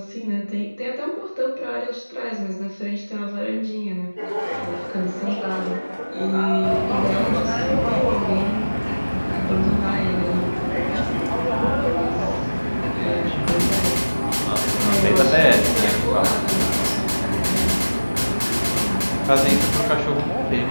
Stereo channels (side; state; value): both; inverted; correlation -1.00